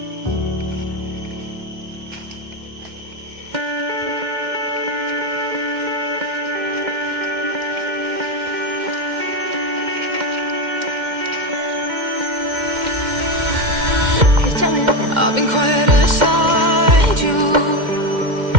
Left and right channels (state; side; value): late; left; 2.1 ms